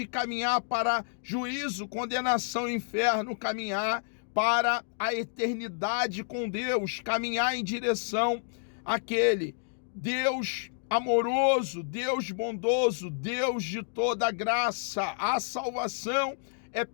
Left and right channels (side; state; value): right; silent; digital silence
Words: caminhar para juízo, condenação e inferno, caminhar para a eternidade com Deus, caminhar em direção àquele Deus amoroso, Deus bondoso, Deus de toda graça. A salvação é